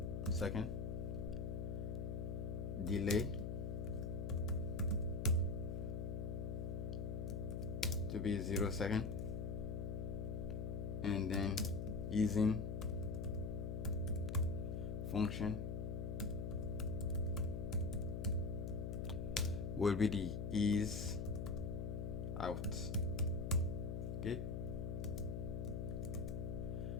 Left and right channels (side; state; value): left; noise; hum, 2 dB below the sound